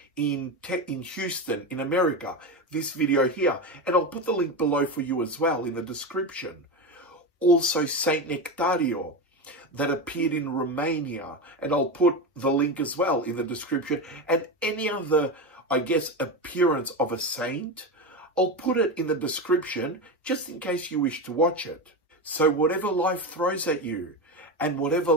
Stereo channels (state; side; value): normal; both; correlation 0.19